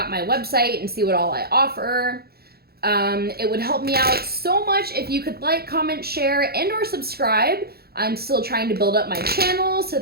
my website and see what all I offer. It would help me out so much if you could like, comment, share, and or subscribe. I'm still trying to build up my channel, so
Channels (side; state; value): left; late; 0.45 ms